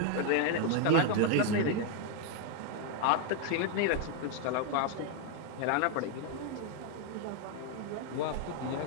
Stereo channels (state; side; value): different; both; correlation 0.00